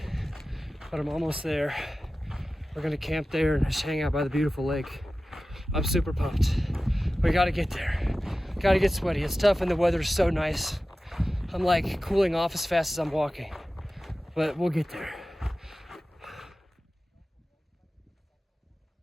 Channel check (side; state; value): both; normal; correlation 0.95